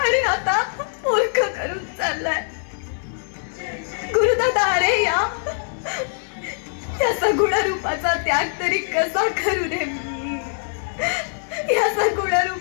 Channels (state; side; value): silent; right; digital silence